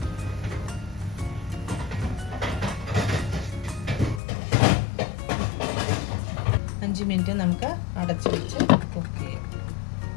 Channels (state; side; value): drops out; right; at 4.2 s